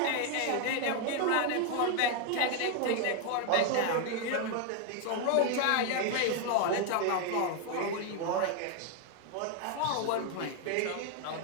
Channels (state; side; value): different; both; correlation 0.01